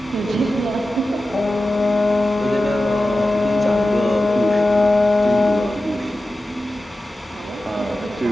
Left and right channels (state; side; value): normal; both; correlation 0.94